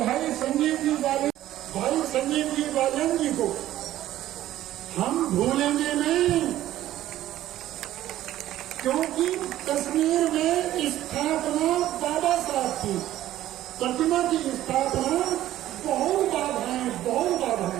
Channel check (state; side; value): quieter; left; 13.7 dB